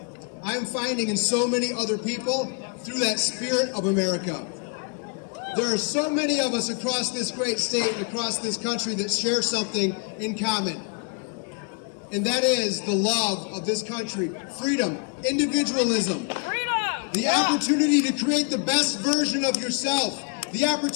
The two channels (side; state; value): right; quieter; 37.7 dB